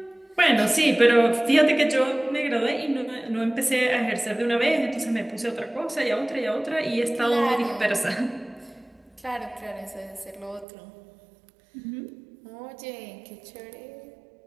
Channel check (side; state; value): left; drops out; at 10.7 s